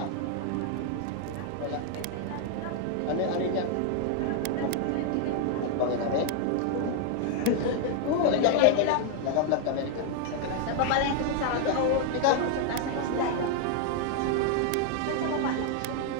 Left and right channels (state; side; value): different; both; correlation 0.00